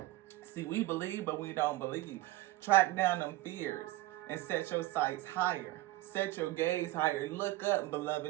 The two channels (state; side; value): quieter; left; 17.5 dB